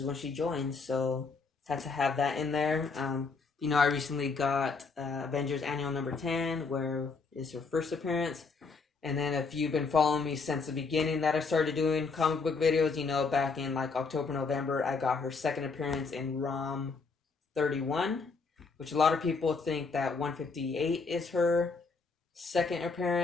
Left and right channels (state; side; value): quieter; right; 4.5 dB